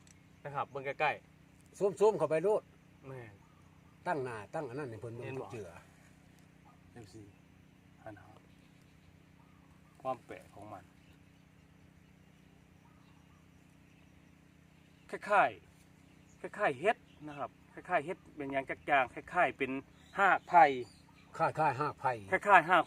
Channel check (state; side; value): identical; both; correlation 1.00